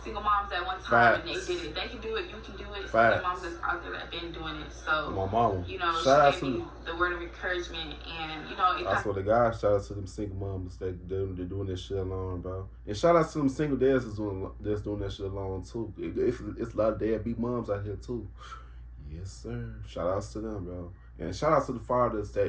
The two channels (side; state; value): both; identical; correlation 1.00